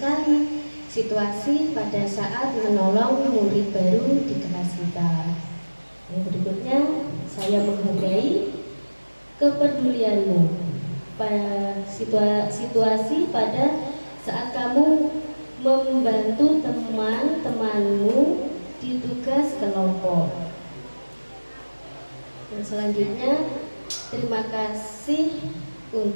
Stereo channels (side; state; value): both; inverted; correlation -1.00